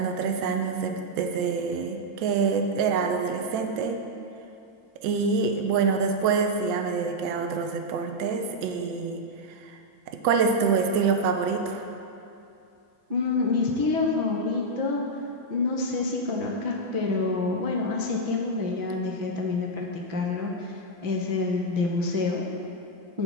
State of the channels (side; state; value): left; late; 6.8 ms